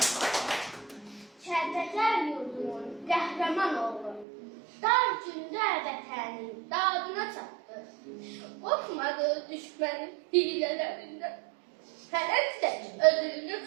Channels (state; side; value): drops out; left; at 4.2 s